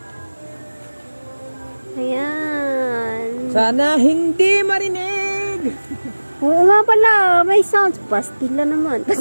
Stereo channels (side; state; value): both; inverted; correlation -1.00